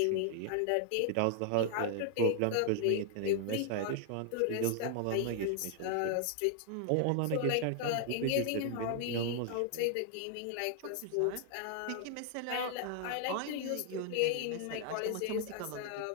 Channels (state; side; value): different; both; correlation 0.00